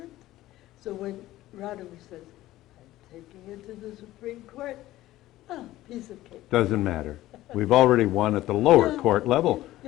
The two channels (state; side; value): quieter; right; 15.7 dB